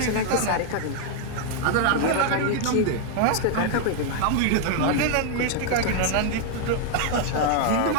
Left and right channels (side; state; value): both; different; correlation 0.00